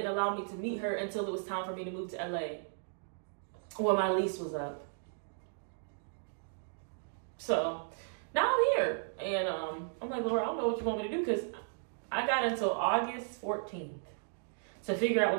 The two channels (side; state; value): left; silent; digital silence